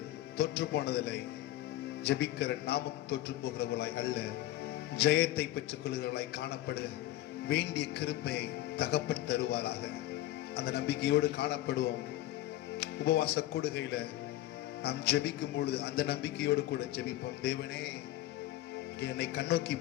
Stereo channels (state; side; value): quieter; right; 15.1 dB